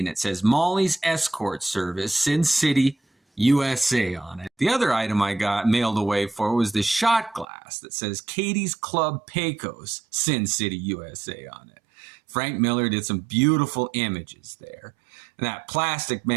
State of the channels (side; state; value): left; drops out; at 7.5 s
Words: it says Molly's Escort Service, Sin City, USA on it. The other item I got mailed away for was this shot glass that says Katie's Club Pecos, Sin City, USA on it. Frank Miller did some beautiful images there. And that Plastic